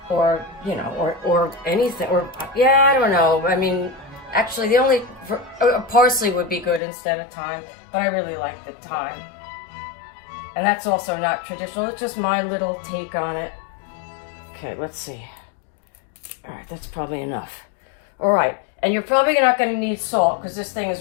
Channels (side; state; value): right; drops out; at 6.8 s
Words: or you know, or anything, or yeah, I don't know. I mean, actually, parsley would be good instead of thyme, but I really like the thyme. And that's also not traditional. It's just my little take on it. Okay, let's see. All right, that's probably enough. All right, and you're probably not going to need salt because this thing